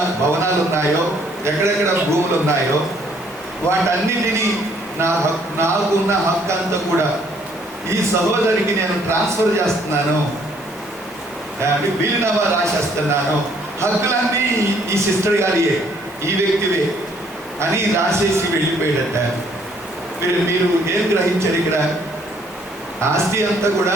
భవనాలు ఉన్నాయో, ఎక్కడెక్కడ భూములు ఉన్నాయో వాటన్నిటినీ నాకున్న హక్కు అంతా కూడా ఈ సహోదరికి నేను ట్రాన్స్ఫర్ చేస్తున్నాను, వీలునామా రాసేస్తున్నాను, హక్కులన్నీ ఈ సిస్టర్ గారియే, ఈ వ్యక్తివే అని రాసేసి వెళ్ళిపోయాడట. మీరు ఏం గ్రహించారు ఇక్కడ? ఆస్తి అంతా కూడా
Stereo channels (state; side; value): noise; left; hiss, 26 dB below the sound